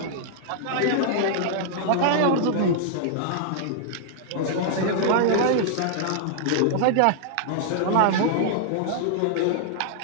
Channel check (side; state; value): both; different; correlation -0.01